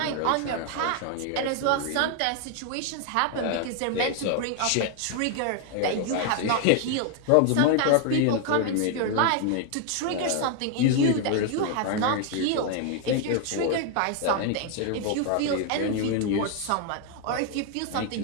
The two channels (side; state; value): both; different; correlation 0.00